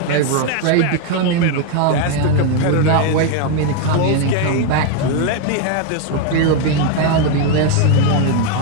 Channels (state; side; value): different; both; correlation 0.01